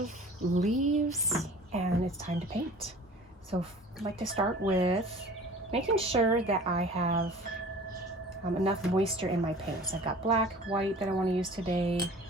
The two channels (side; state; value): both; normal; correlation 0.44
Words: leaves and it's time to paint. So I'd like to start with making sure that I have enough moisture in my paints. I've got black, white that I want to use today.